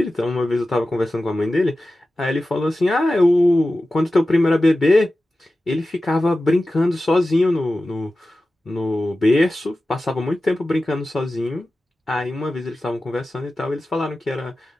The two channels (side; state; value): both; normal; correlation 0.94